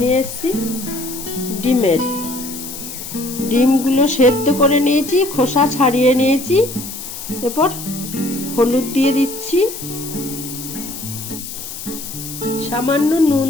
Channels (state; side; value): noise; left; hiss, 10 dB below the sound